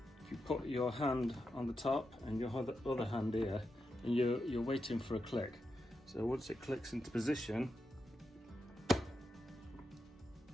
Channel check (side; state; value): both; normal; correlation 0.87